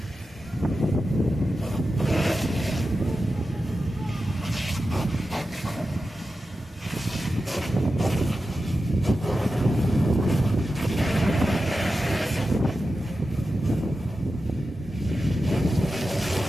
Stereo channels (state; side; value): normal; both; correlation 0.92